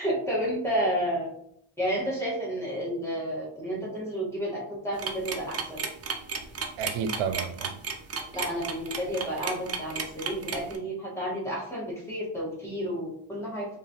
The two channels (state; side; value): normal; both; correlation 0.12